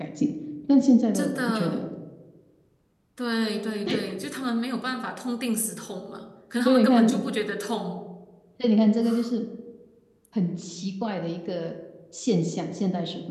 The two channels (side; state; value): both; identical; correlation 1.00